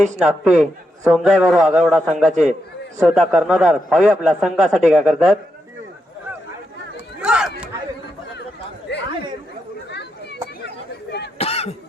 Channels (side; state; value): both; normal; correlation 0.84